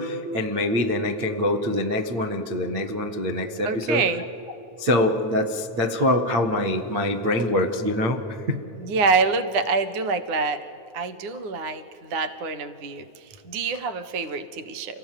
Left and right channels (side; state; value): left; late; 8.8 ms